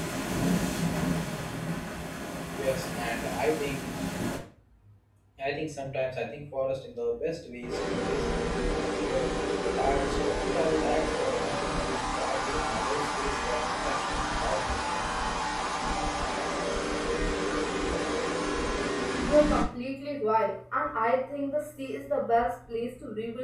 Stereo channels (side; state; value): both; identical; correlation 1.00